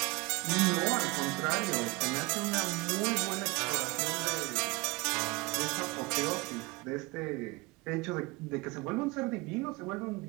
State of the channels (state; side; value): quieter; left; 24.5 dB